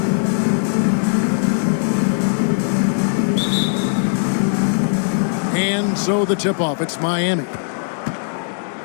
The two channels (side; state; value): right; silent; digital silence